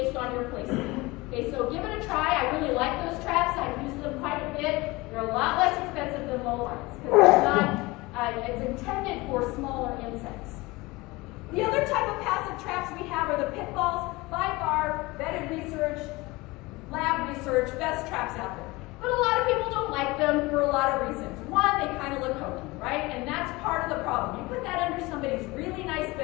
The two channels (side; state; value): right; quieter; 22.3 dB